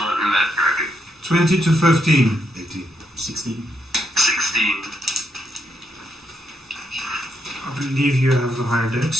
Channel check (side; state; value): both; normal; correlation 0.79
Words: in that bracket. 20 to 15. 18. 16. 16. I believe you have the higher dex.